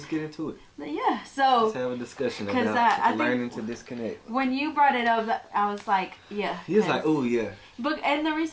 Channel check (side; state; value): both; identical; correlation 1.00